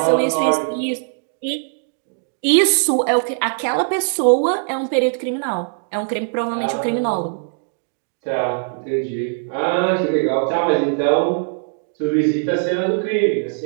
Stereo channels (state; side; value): silent; left; digital silence